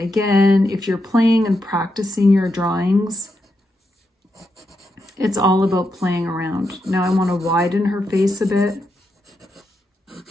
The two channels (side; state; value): both; normal; correlation 0.84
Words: if you're playing and practicing your drawings, it's all about playing around. Now I want to widen her face a bit.